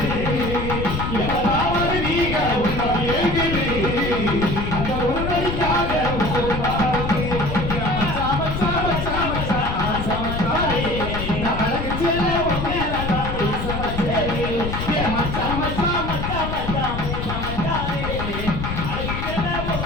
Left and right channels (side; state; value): left; noise; rumble, 3 dB below the sound